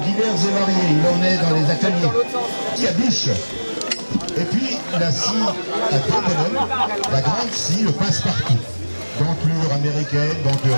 divers et variés. Il en est dans les ateliers. Il y a bûche. Et puis, la scie à deux bonhommes, la grande scie, le passe-partout. Denture américaine, denture...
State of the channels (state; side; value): inverted; both; correlation -1.00